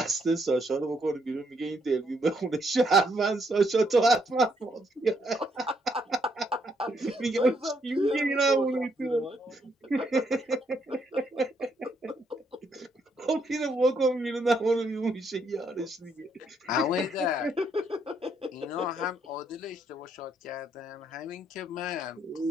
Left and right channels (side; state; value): both; normal; correlation 0.73